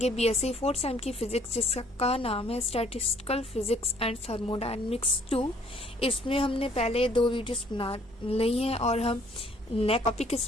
बीएससी फोर्थ सेम की फिजिक्स, जिसका नाम है स्टैटिस्टिकल फिजिक्स एंड थर्मोडायनेमिक्स 2। इसमें हमने पहले 2 वीडियोस बना ली हैं और हम नेक्स्ट टॉपिक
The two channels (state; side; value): normal; both; correlation 0.61